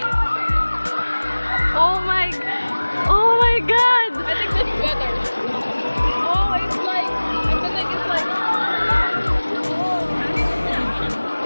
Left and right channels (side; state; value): both; inverted; correlation -1.00